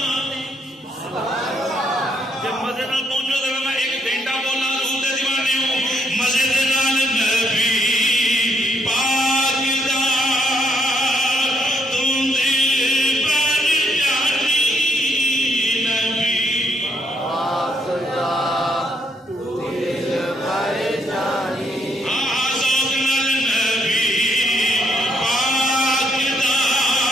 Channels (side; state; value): both; normal; correlation 0.74